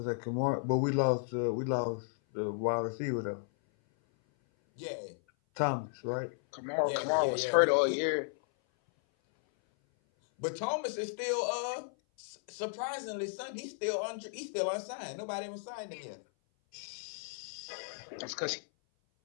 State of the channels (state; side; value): silent; right; 55 dB below the other